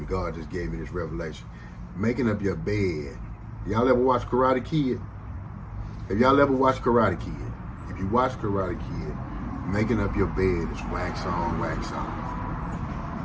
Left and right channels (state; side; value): identical; both; correlation 1.00